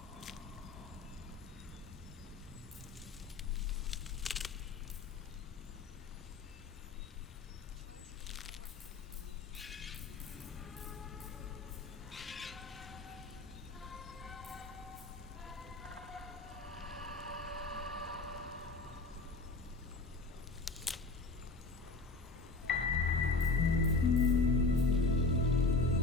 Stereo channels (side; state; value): right; quieter; 3.6 dB